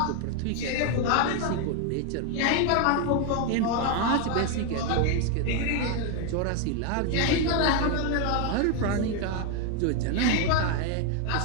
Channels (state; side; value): different; both; correlation 0.01